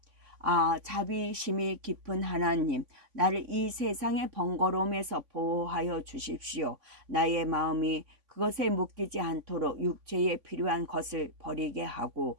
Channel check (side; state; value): left; late; 3.5 ms